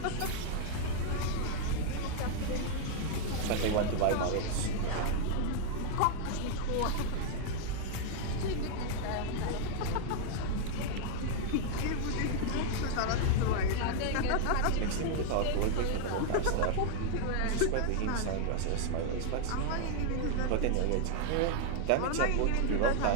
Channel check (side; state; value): both; different; correlation 0.00